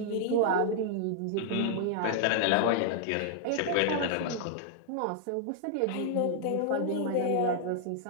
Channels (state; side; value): different; both; correlation -0.01